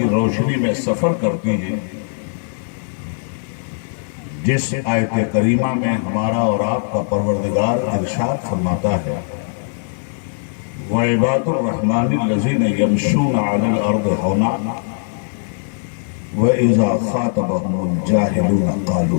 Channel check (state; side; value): silent; right; digital silence